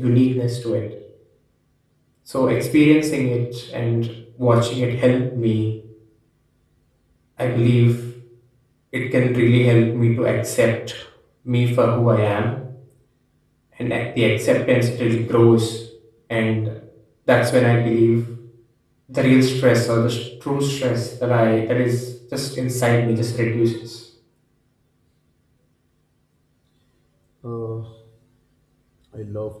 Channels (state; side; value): identical; both; correlation 1.00